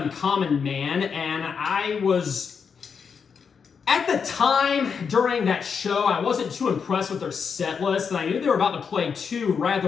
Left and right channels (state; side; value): quieter; right; 6.2 dB